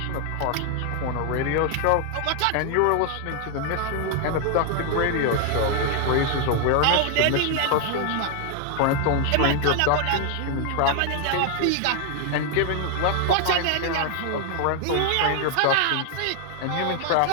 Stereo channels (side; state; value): both; different; correlation 0.00